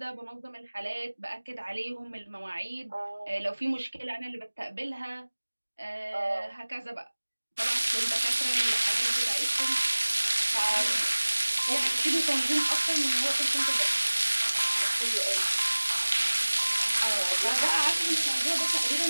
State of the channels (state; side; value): inverted; both; correlation -1.00